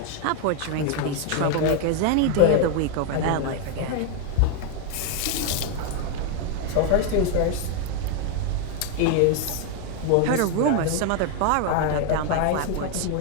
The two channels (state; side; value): different; both; correlation 0.01